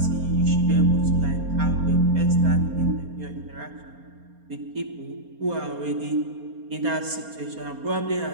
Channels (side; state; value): left; late; 4.3 ms